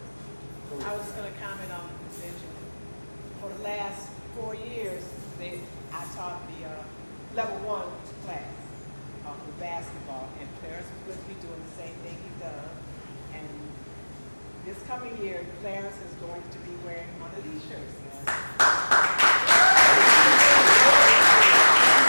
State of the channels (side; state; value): both; inverted; correlation -1.00